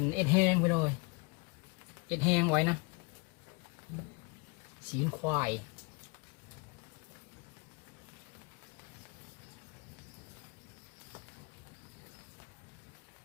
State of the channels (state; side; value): quieter; right; 30.0 dB